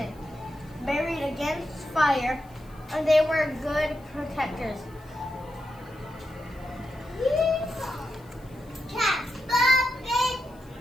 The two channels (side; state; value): left; noise; hiss, 29 dB below the sound